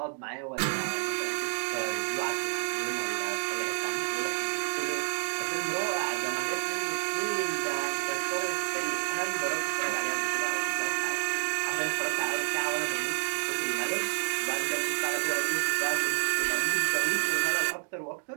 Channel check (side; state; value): left; silent; 57 dB below the other